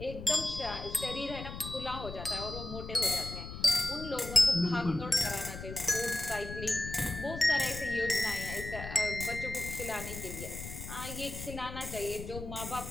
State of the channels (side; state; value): left; noise; rumble, 9 dB below the sound